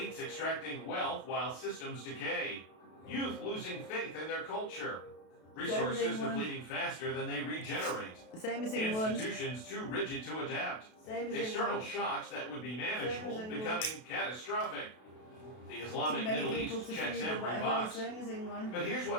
extracting wealth while systems decay. Youth losing faith in their culture. Resources depleting faster than they regenerate. Same as England. Institutions too rigid to adapt. Same as External England. shocks that would be manageable England. becoming catastrophic. The Too Islamic many Middle people East to checks feed or every whatever. box. Same as England. But here's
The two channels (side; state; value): right; late; 32 ms